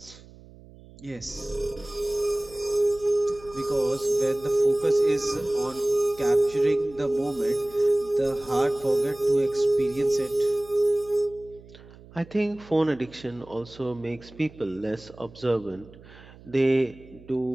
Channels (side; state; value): right; noise; hum, 21 dB below the sound